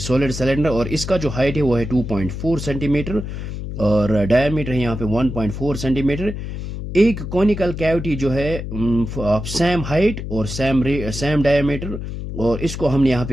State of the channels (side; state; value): left; noise; hum, 7 dB below the sound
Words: सिलेंडर और इसका जो हाइट है वो है 2.4 सेंटीमीटर और डायमीटर है यहाँ पे 1.4 सेंटीमीटर। एक कॉनिकल कैविटी जो है सेम हाइट और सेम डायमीटर, और इसको हमने यहाँ